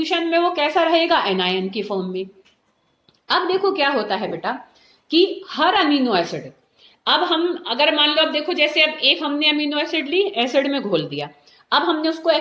में वो कैसा रहेगा, एनायन की फॉर्म में। अब देखो क्या होता है बेटा कि हर अमीनो एसिड, अब हम अगर मान लो, अब देखो जैसे अब एक हमने अमीनो एसिड ली, एसिड में घोल दिया, अब हमने उसको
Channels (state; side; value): identical; both; correlation 1.00